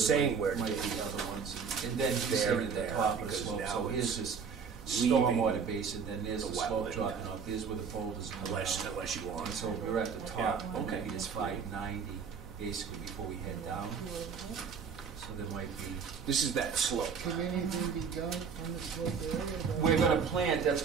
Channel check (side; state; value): left; quieter; 6.1 dB